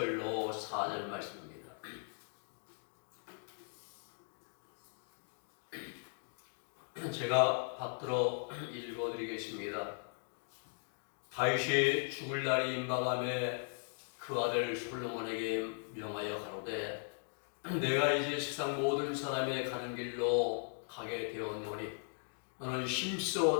4절 말씀입니다. 제가 받들어 읽어드리겠습니다. 다윗이 죽을 날이 임박함에 그 아들 솔로몬에게 명하여 가로되 내가 이제 세상 모든 사람의 가는 길로 가게 되었노니 너는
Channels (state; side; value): silent; right; 52 dB below the other